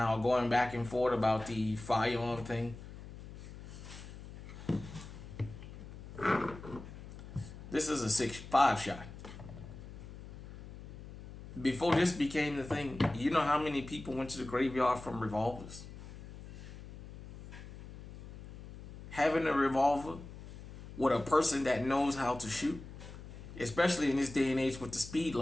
are going back and forth about the firearm thing. This is a 6.5 shot. Before this became the thing, you know how many people went to the graveyard from revolvers? Having a revolver with a person that knows how to shoot, especially in this day and age with the speed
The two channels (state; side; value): noise; left; hum, 14 dB below the sound